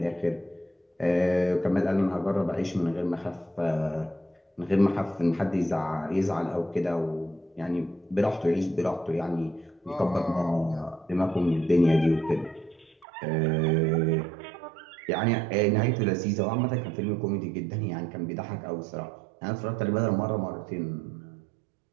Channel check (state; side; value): drops out; left; at 13.1 s